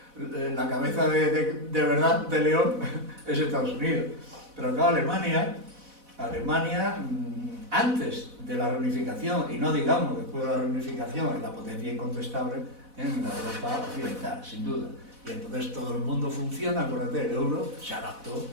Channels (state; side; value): late; left; 4.1 ms